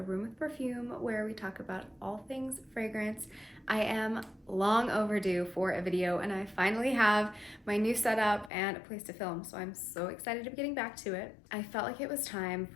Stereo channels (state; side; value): drops out; right; at 8.5 s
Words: Room with Perfume, where we talk about all things fragrance. I am long overdue for a video and I finally have my new setup and a place to film, so I'm so excited to be getting back to it. I felt like it was time